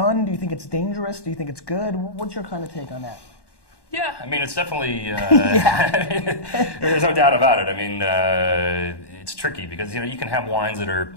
Do you think it's dangerous? Do you think it's good? What's your kind of take on that? Yeah, I mean, it's definitely, yeah. there's no doubt about it. I mean, it's tricky because, you can have wines that are,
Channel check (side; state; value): right; late; 1.1 ms